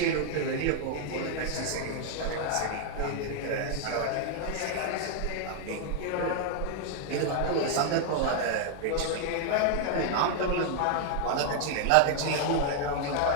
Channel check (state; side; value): different; both; correlation 0.00